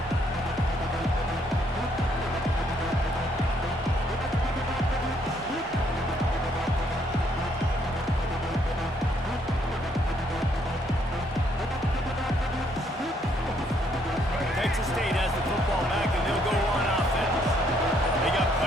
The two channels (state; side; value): normal; both; correlation 0.69